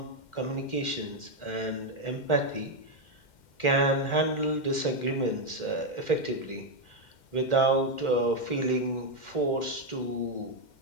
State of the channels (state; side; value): late; right; 2.1 ms